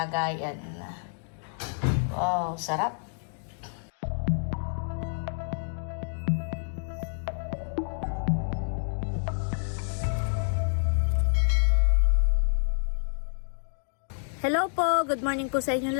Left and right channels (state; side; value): silent; right; digital silence